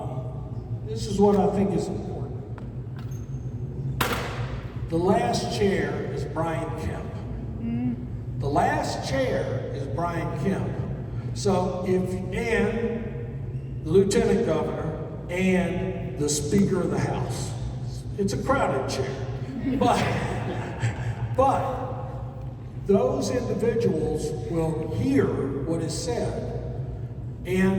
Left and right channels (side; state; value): both; identical; correlation 1.00